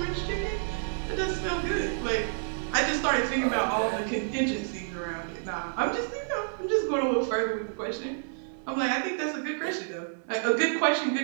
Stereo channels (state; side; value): silent; left; 59 dB below the other